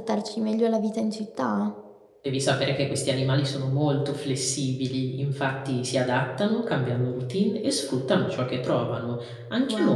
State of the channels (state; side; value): identical; both; correlation 1.00